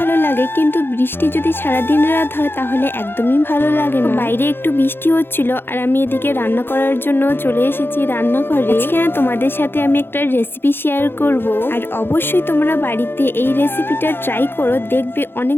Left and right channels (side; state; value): right; late; 0.10 ms